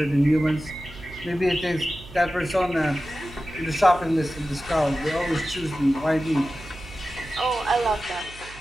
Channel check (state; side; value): noise; right; hum, 18 dB below the sound